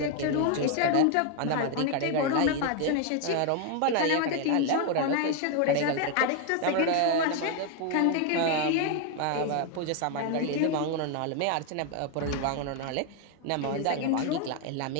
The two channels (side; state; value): both; different; correlation 0.01